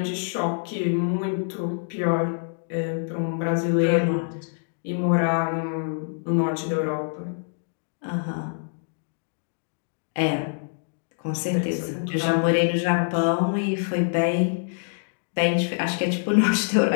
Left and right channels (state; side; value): silent; right; digital silence